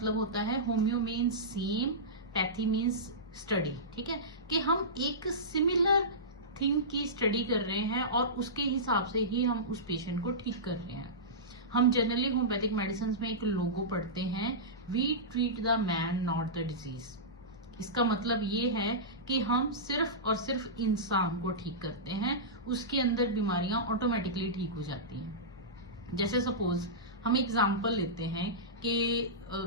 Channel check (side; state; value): both; normal; correlation -0.17